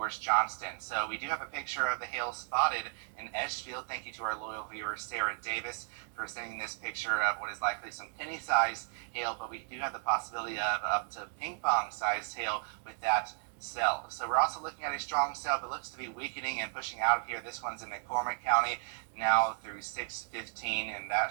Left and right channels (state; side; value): silent; left; 55 dB below the other